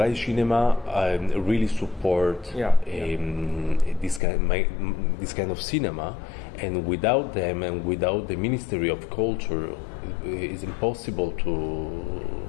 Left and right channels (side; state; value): right; drops out; at 4.2 s